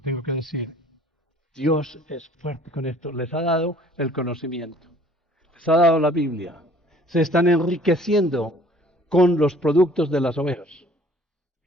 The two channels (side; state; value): both; normal; correlation 0.54